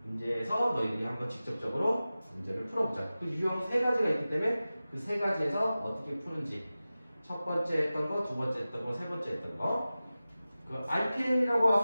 문제에서 너희들이 한번 직접적으로 문제를 풀어보자. 그 유형 세 가지가 있기 때문에 그 세 가지에서 어떻게 푸는지 첫 번째 했던 거, 두 번째 했던 거, 세 번째 했던 거. 그 RPM이라고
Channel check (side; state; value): both; inverted; correlation -0.95